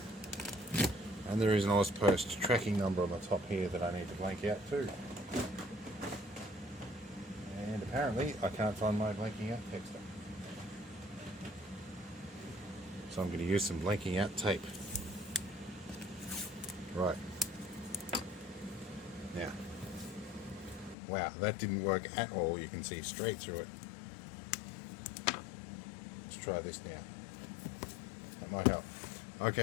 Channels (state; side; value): drops out; right; at 21.0 s